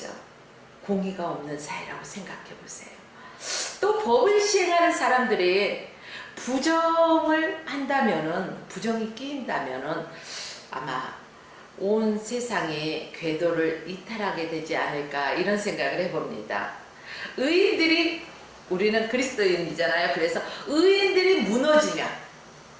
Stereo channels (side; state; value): both; identical; correlation 1.00